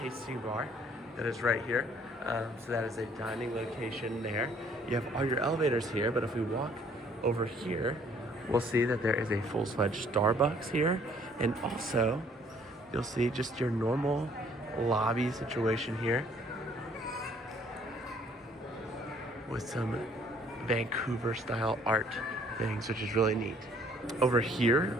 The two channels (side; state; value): both; normal; correlation 0.60